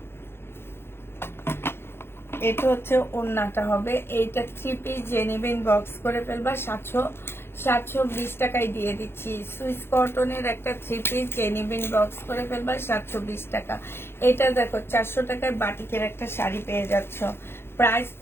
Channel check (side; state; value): right; late; 0.11 ms